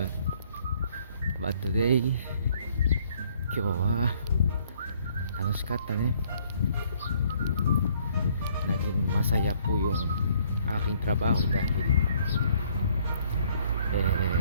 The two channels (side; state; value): both; inverted; correlation -0.63